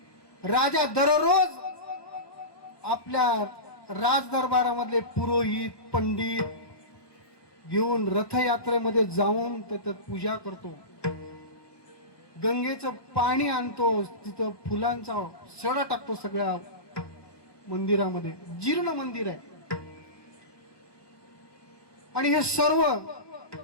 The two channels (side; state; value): right; late; 1.2 ms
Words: राजा दररोज आपल्या राजदरबारामधले पुरोहित पंडित घेऊन रथयात्रेमध्ये जाऊन त्याच्यात पूजा करतो. गंगेचं पाणी आणतो, तिथं फुलांचा सडा टाकतो सगळ्या मंदिरामध्ये. जीर्ण मंदिर आहे आणि हे सर्व